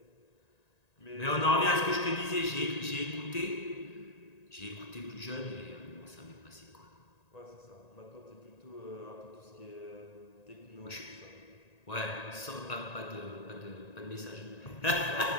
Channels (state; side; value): late; right; 1.9 ms